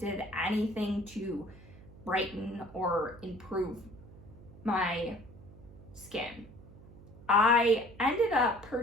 anything to brighten or improve my skin. I ended up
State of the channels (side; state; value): right; noise; hum, 19 dB below the sound